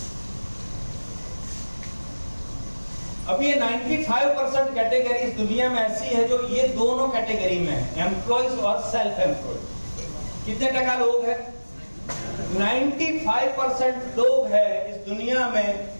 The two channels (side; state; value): both; inverted; correlation -1.00